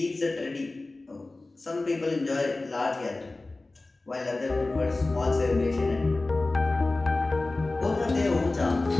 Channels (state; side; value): quieter; right; 3.1 dB